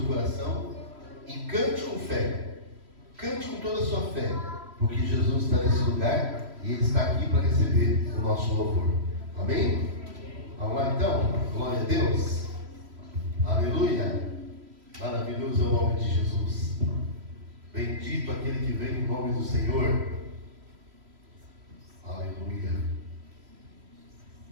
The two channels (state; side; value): late; left; 3.1 ms